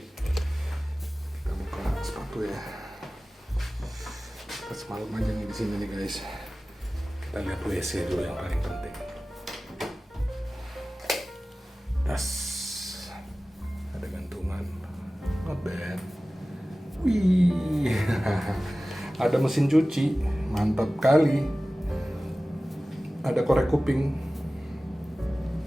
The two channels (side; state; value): both; normal; correlation 0.97